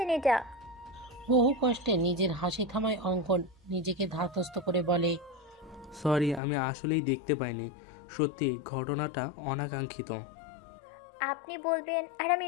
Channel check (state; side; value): drops out; right; at 6.4 s